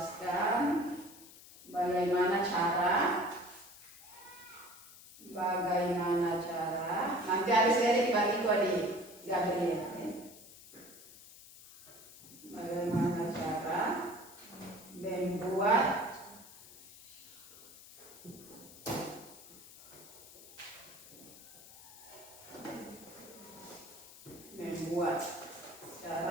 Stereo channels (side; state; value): left; noise; hiss, 19 dB below the sound